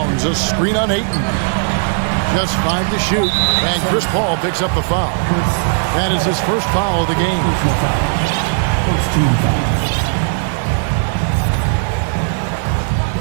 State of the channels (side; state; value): left; silent; digital silence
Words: a screen on Ayton. Just 5 to shoot, and Chris Paul picks up the foul. That is his first foul of the game.